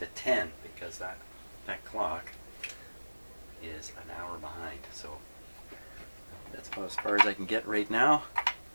10, because that clock is an hour behind. So that's about as far as I can get right now.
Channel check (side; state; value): both; inverted; correlation -1.00